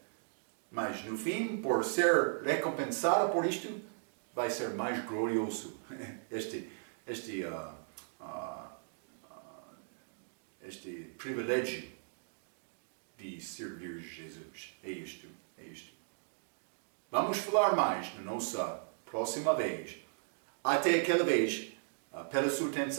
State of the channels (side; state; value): left; silent; digital silence